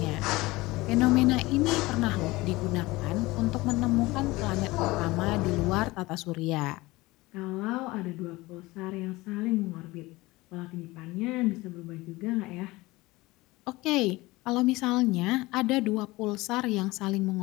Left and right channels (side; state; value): right; quieter; 20.7 dB